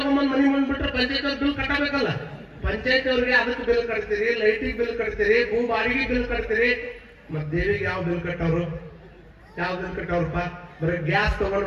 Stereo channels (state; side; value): identical; both; correlation 1.00